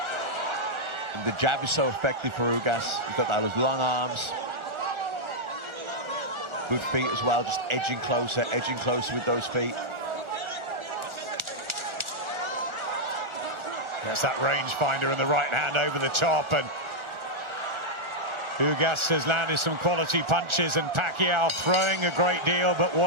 And the jab is so effective for Ugas. He's got those long arms. Good feet as well, just edging closer with those feet. There's that rangefinder and the right hand over the top, and Ugas has landed some quality punches, and Pacquiao throwing a great deal, but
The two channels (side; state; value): left; late; 1.4 ms